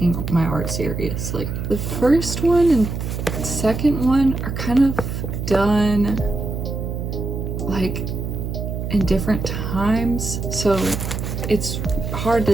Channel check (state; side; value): noise; right; hum, 4 dB below the sound